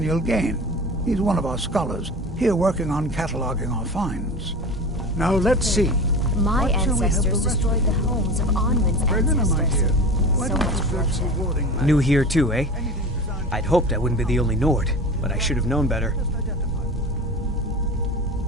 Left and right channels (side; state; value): both; normal; correlation 0.33